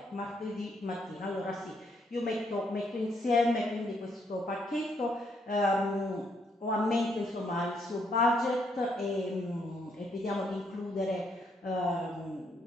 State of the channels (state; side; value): normal; both; correlation 0.73